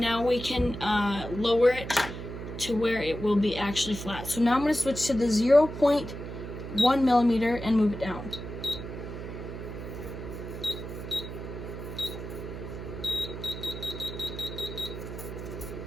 we can lower it to where it will be actually flat. So now I'm going to switch to the 0.1 millimeter and move it down.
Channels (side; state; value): right; noise; hum, 9 dB below the sound